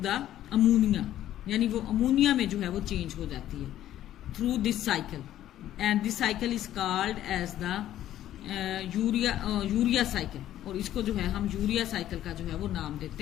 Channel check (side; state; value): right; quieter; 12.5 dB